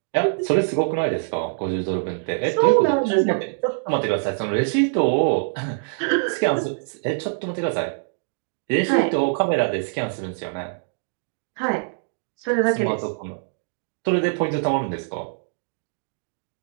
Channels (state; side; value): silent; left; digital silence